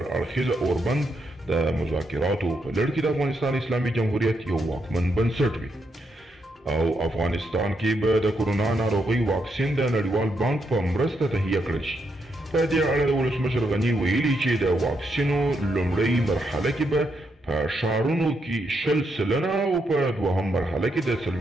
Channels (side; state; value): both; normal; correlation 0.80